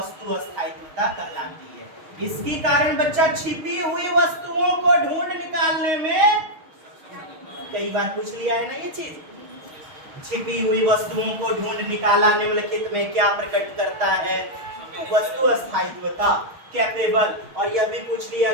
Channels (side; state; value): left; late; 6.5 ms